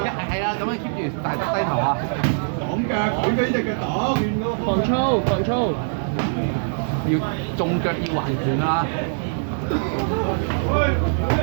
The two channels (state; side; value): silent; left; digital silence